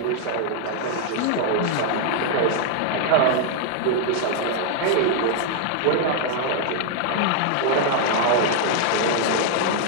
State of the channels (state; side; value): different; both; correlation 0.00